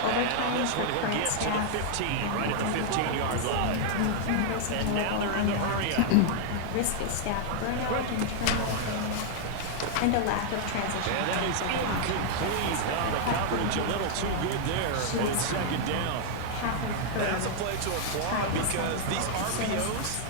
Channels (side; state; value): both; different; correlation 0.00